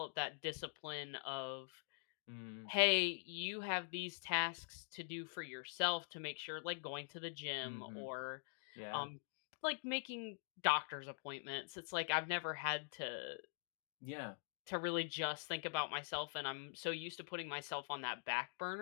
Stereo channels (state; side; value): silent; right; digital silence